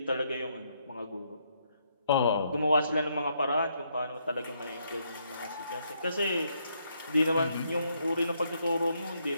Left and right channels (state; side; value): inverted; both; correlation -0.74